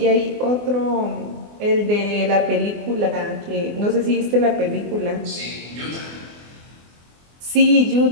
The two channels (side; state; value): left; late; 24 ms